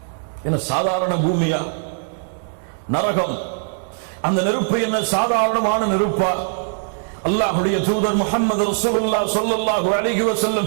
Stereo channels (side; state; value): left; silent; digital silence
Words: என்ன சாதாரண பூமியா? நரகம் அந்த நெருப்பு என்ன சாதாரணமான நெருப்பா? அல்லாஹ்வுடைய தூதர் முஹம்மது ரசூலுல்லாஹ் ஸல்லல்லாஹு அலைஹி வஸல்லம்